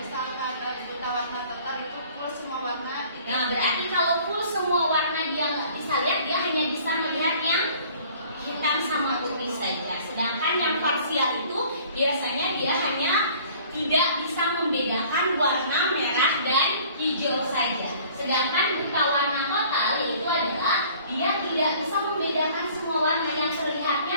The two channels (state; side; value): inverted; both; correlation -0.52